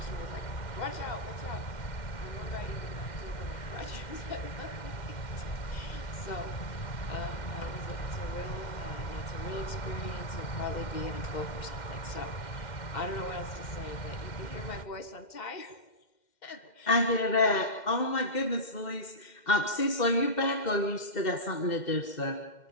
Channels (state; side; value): late; right; 2.1 ms